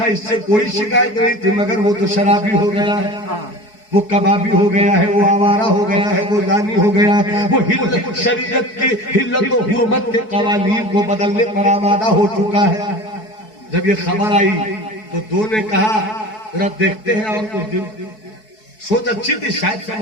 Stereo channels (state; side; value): late; right; 4.6 ms